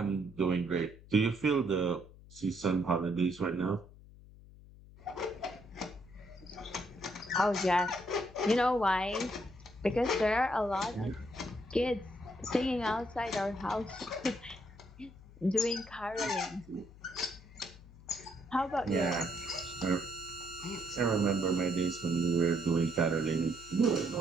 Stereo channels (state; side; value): noise; left; hum, 20 dB below the sound